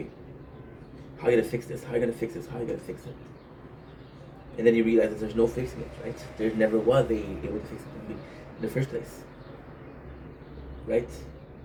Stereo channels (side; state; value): both; identical; correlation 1.00